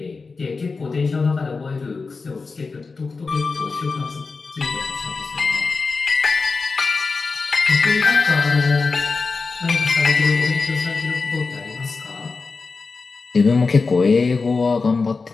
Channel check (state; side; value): quieter; right; 4.3 dB